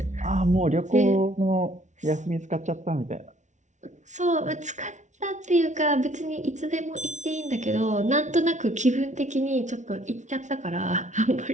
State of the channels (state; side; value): late; left; 0.35 ms